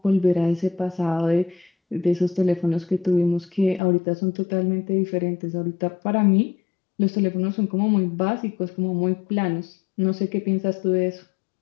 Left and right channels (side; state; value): right; drops out; at 3.8 s